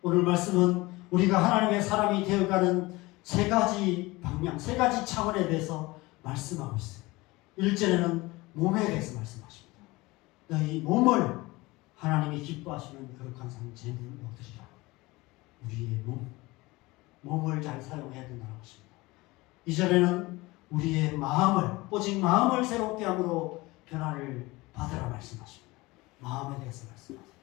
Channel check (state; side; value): quieter; right; 21.6 dB